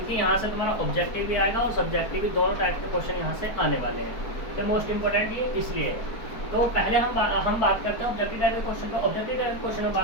यहाँ से तुम्हारा ऑब्जेक्टिव भी आएगा और सब्जेक्टिव भी, दोनों टाइप के क्वेश्चन यहाँ से आने वाले हैं। तो मोस्ट इंपॉर्टेंट ये इसलिए है। तो पहले हम बात करते हैं ऑब्जेक्टिव टाइप के क्वेश्चन का। ऑब्जेक्टिव टाइप के क्वेश्चन में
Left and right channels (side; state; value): right; late; 4.3 ms